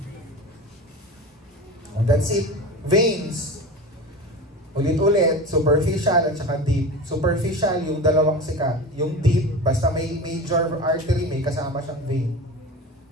That's it. Veins. Ulit-ulit, superficial at saka deep. Superficial, yung dalawang sikat. Yung deep, basta may major artery, may kasama siyang vein.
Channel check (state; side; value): normal; both; correlation 0.30